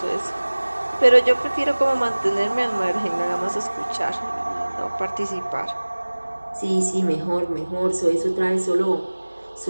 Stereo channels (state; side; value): inverted; both; correlation -1.00